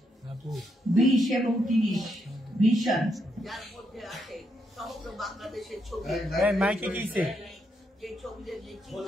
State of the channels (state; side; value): normal; both; correlation 0.79